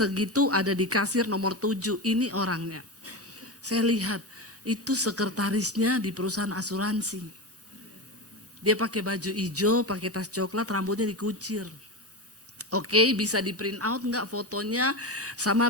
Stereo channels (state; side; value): normal; both; correlation 0.20